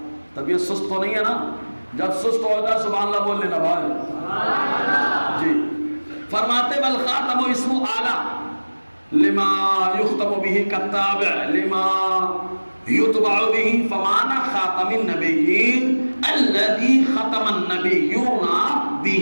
طبیعت سست تو نہیں ہے نا؟ جب سست ہو جائے سبحان اللہ بول لینا بھائی جی۔ فرماتے والخاتم اسم اعلیٰ لما یختم به کالتابع لما یتبع به، فمعنى خاتم النبیین الذي ختم النبیون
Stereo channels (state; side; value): inverted; both; correlation -1.00